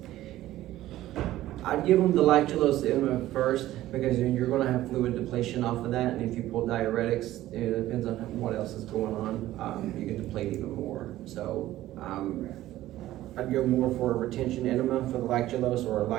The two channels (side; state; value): left; quieter; 14.9 dB